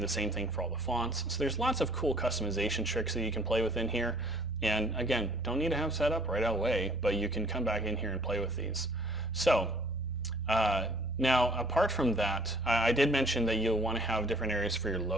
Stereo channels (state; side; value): normal; both; correlation 0.56